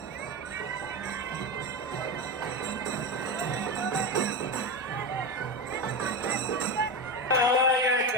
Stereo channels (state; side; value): normal; both; correlation 0.18